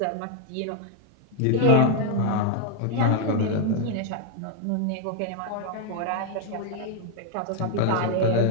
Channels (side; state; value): both; different; correlation 0.00